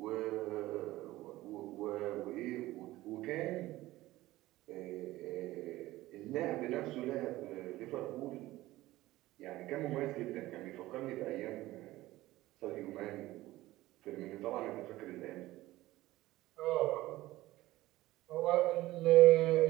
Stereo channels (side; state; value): left; quieter; 17.2 dB